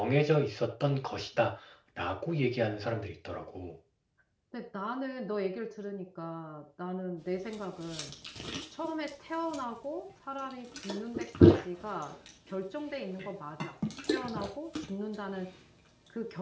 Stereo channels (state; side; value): identical; both; correlation 1.00